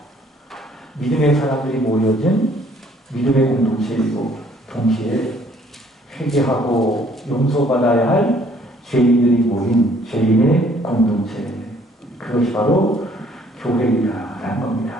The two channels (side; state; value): both; normal; correlation 0.61